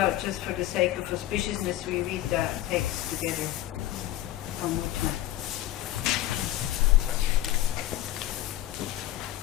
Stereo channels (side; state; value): right; quieter; 14.4 dB